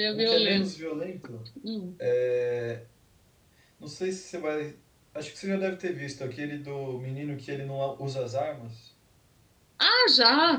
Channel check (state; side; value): identical; both; correlation 1.00